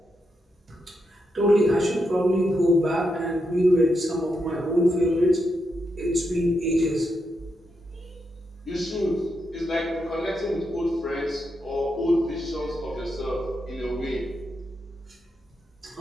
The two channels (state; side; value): normal; both; correlation 0.83